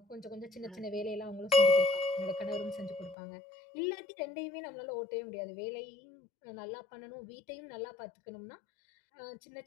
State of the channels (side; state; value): right; drops out; at 3.2 s